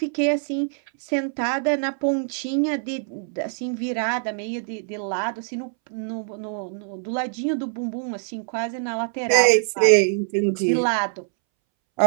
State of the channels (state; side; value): silent; left; 63 dB below the other